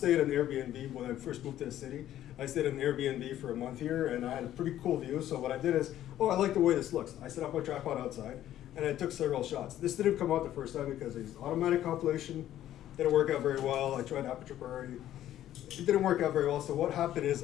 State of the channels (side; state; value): right; quieter; 12.4 dB